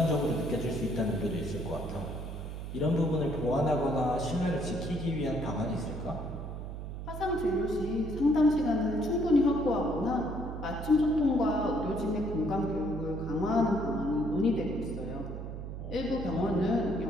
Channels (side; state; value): right; noise; hum, 7 dB below the sound